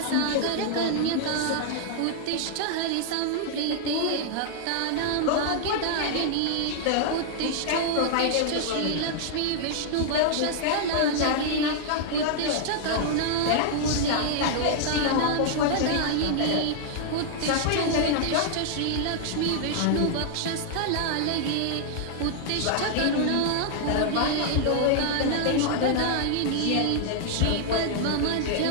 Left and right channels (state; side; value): different; both; correlation -0.01